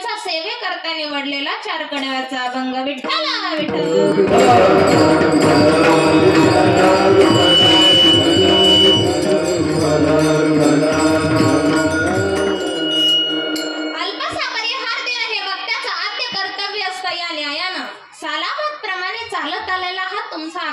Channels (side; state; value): both; identical; correlation 1.00